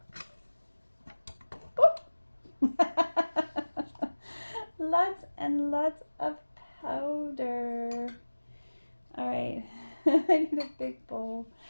Lots and lots of powder. All right, I need a big bowl.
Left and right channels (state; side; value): inverted; both; correlation -1.00